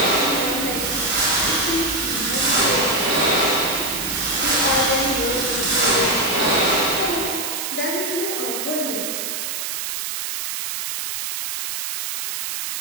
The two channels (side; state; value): right; noise; hiss, 4 dB below the sound